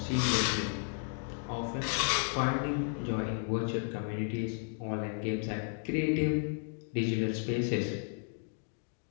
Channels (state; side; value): silent; right; 55 dB below the other